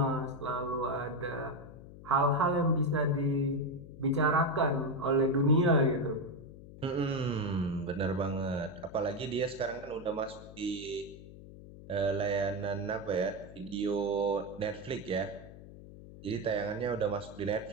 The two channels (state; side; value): noise; left; hum, 16 dB below the sound